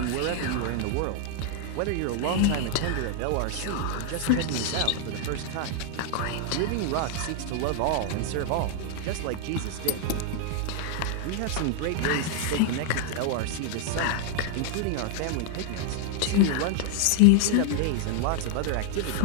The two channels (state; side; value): different; both; correlation 0.00